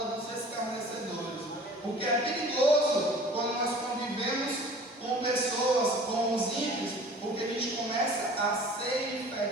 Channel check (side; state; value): both; normal; correlation 0.46